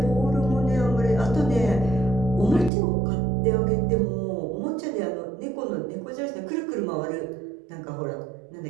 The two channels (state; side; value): drops out; left; at 2.7 s